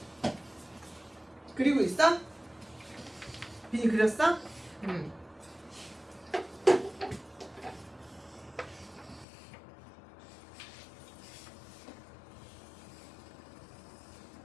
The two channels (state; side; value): drops out; right; at 9.2 s